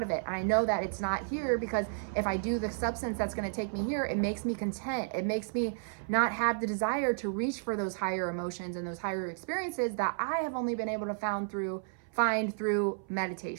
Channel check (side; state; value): left; silent; 56 dB below the other